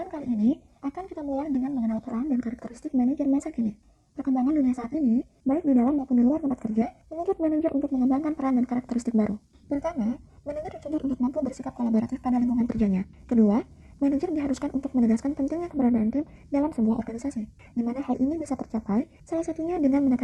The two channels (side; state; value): both; identical; correlation 1.00